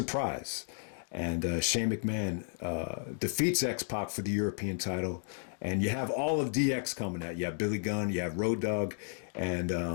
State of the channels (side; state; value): right; silent; 56 dB below the other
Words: And Shane McMahon defeats X-Pac for the European title. And you have all of DX coming at you. You have Billy Gunn, you have Road Dogg, and,